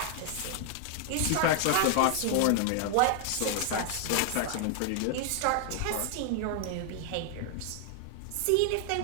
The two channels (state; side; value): different; both; correlation 0.00